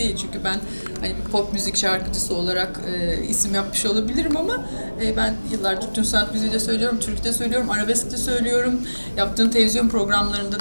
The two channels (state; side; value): inverted; both; correlation -1.00